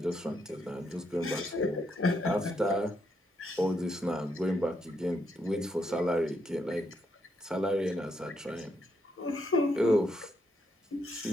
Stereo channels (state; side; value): normal; both; correlation 0.78